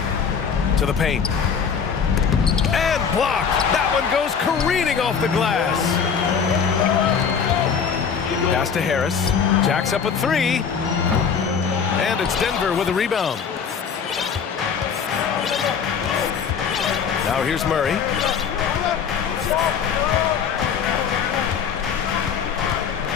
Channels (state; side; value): quieter; right; 6.7 dB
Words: to the paint. And blocked. That one goes careening off the glass. Pass to Harris. Jacks up a 3. And it's Denver with a rebound. Now here's Murray.